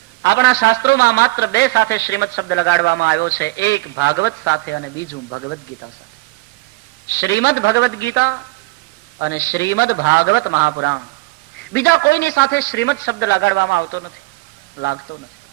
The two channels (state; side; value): quieter; left; 22.2 dB